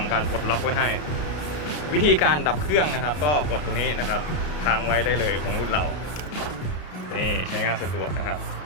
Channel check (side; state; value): right; late; 33 ms